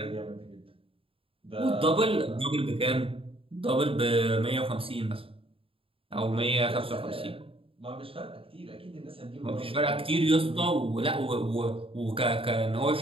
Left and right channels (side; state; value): left; late; 0.27 ms